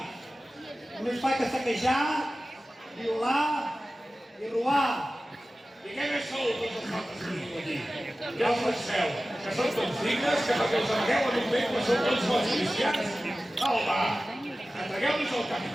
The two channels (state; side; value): normal; both; correlation 0.96